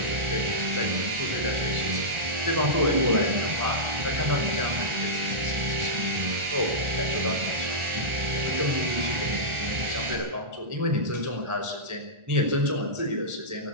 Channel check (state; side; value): late; left; 1.4 ms